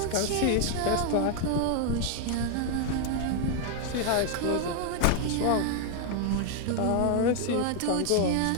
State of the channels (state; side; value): different; both; correlation 0.00